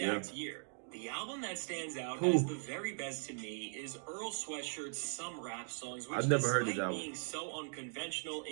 year, the album that stands out Who? as the very best to me is Earl Sweatshirt's Some Rap Songs, which I've never heard this despite album. being so unconventional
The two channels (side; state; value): left; silent; 51 dB below the other